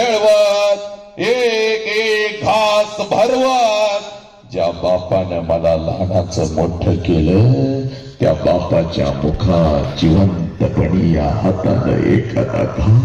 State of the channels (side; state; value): both; identical; correlation 1.00